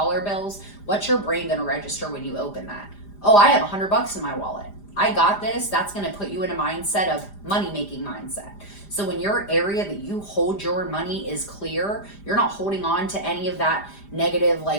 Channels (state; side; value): late; right; 5.0 ms